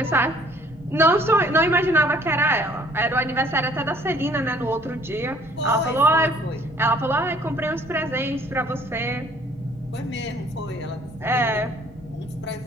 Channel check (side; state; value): both; normal; correlation 0.58